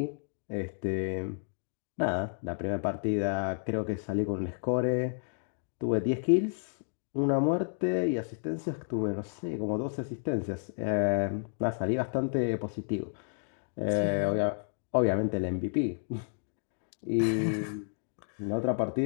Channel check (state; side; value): silent; right; digital silence